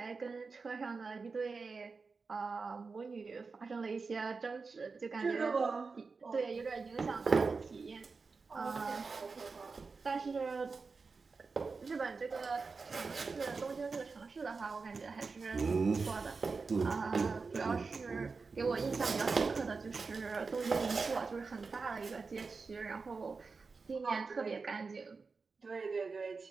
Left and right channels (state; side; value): quieter; left; 4.5 dB